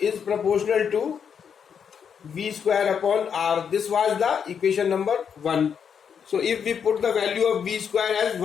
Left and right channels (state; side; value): quieter; right; 7.3 dB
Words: proportional to v square upon r. This was the equation number 1. So if we put the value of v square as